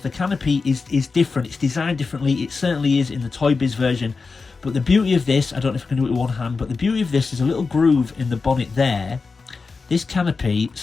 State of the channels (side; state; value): right; quieter; 4.5 dB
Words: the canopy is different. It's designed differently. It certainly is in the Toy Biz version. But the beauty of this, I don't know if I can do it with one hand, but the beauty of this is a little groove in the bonnet there. This canopy